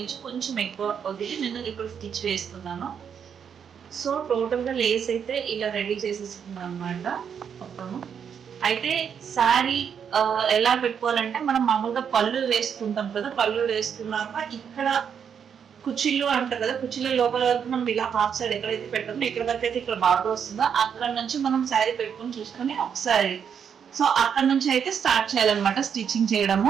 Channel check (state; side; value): quieter; left; 7.6 dB